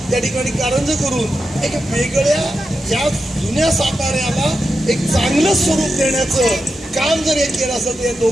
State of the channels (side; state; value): both; normal; correlation 0.89